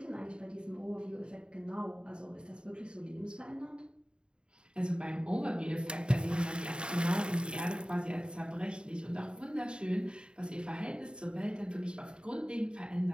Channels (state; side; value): late; left; 0.051 ms